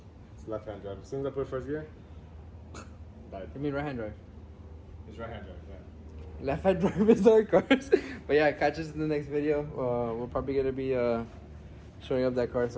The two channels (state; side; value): identical; both; correlation 1.00